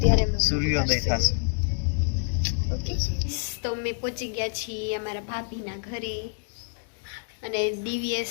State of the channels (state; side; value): silent; right; digital silence